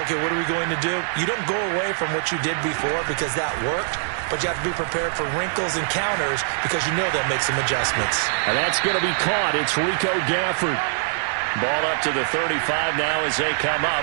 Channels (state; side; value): silent; left; digital silence